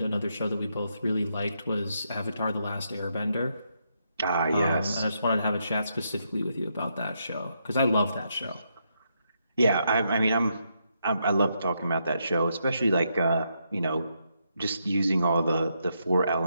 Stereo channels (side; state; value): both; inverted; correlation -0.79